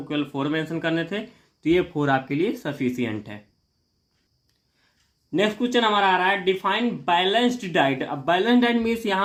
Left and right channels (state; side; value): identical; both; correlation 1.00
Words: केवल 4 मेंशन करने थे, तो ये 4 आपके लिए सफिशियंट है। नेक्स्ट क्वेश्चन हमारा आ रहा है डिफाइन बैलेंस्ड डाइट। अब बैलेंस डाइट मीन्स